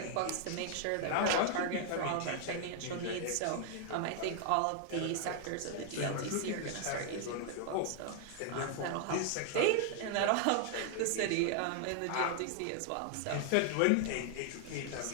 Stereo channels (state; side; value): different; both; correlation 0.00